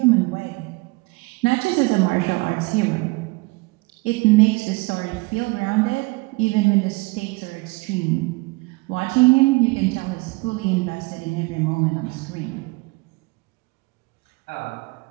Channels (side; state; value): left; quieter; 25.2 dB